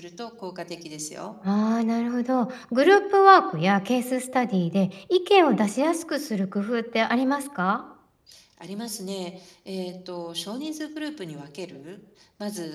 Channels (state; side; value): identical; both; correlation 1.00